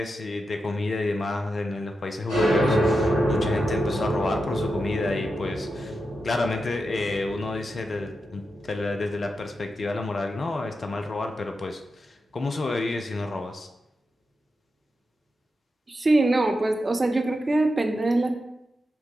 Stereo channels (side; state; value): both; normal; correlation 0.88